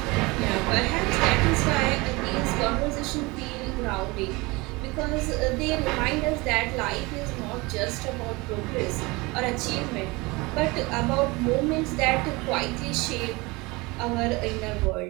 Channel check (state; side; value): quieter; left; 24.2 dB